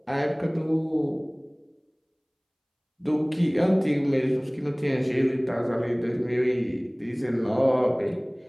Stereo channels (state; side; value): identical; both; correlation 1.00